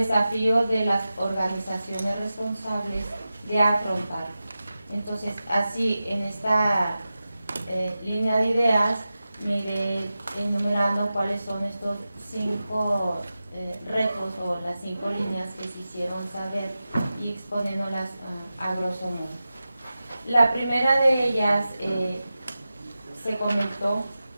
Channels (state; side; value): inverted; both; correlation -0.94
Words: de las organizaciones responsables de afrontar. Entonces, así, en esta línea de ideas, me iré enumerando cuáles son estos 5 retos o las 5 líneas que se hicieron saber y exponiéndolas a grosso modo. La primera de ellas se comentó: